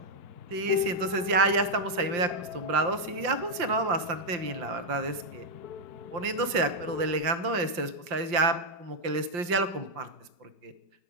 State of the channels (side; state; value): left; late; 5.7 ms